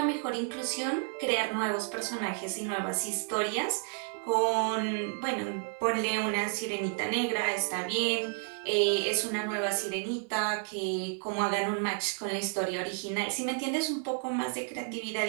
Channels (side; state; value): left; silent; 55 dB below the other